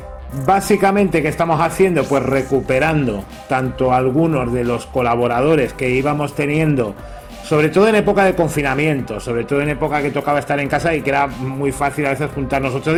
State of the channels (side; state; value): both; identical; correlation 1.00